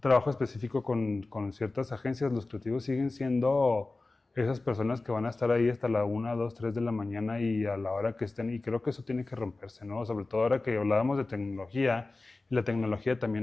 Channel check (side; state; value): right; quieter; 3.3 dB